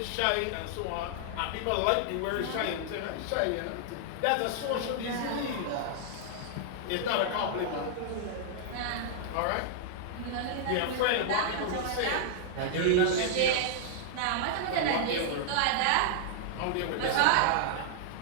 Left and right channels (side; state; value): both; different; correlation -0.01